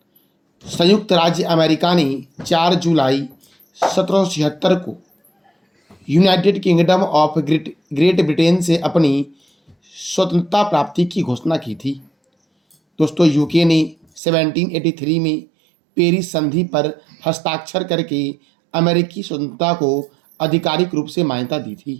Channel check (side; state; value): left; drops out; at 14.2 s